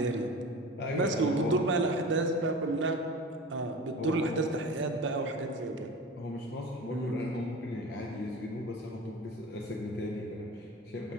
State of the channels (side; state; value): both; normal; correlation 0.34